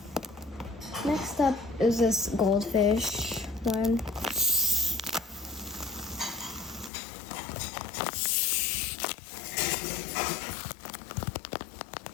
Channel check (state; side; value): drops out; right; at 6.9 s